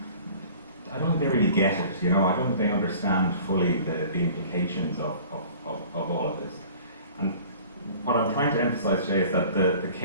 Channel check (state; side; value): inverted; both; correlation -0.46